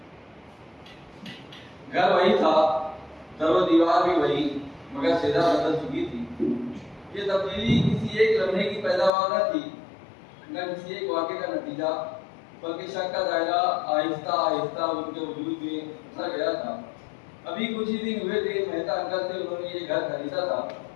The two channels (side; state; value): right; drops out; at 9.1 s